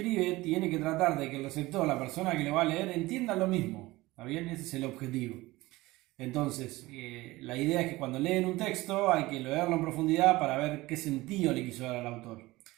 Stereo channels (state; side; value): quieter; left; 19.7 dB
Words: tiene que tratar de que el receptor, la persona que lo va a leer, entienda lo mismo. ¿Está bien? Ese es el objetivo. Entonces, la idea es que cuando leen un texto hay que leerlo en profundidad para ver qué sentido le quiso dar al autor.